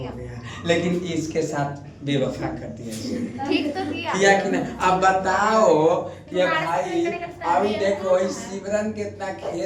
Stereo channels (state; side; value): identical; both; correlation 1.00